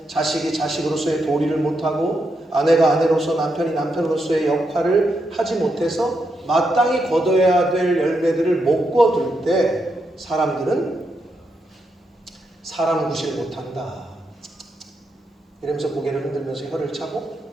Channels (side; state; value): both; normal; correlation 0.82